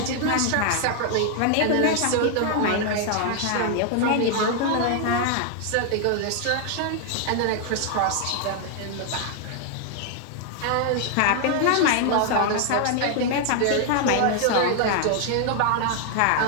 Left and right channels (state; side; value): different; both; correlation 0.00